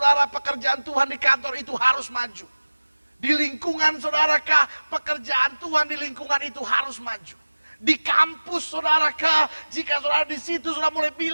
pekerjaan Tuhan di kantor itu harus maju. Di lingkungan saudarakah, pekerjaan Tuhan di lingkungan itu harus maju. Di kampus saudarakah, jika saudara di situ sudah mulai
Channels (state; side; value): inverted; both; correlation -1.00